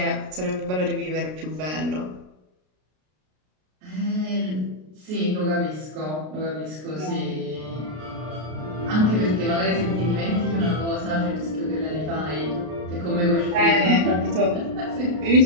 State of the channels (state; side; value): late; left; 33 ms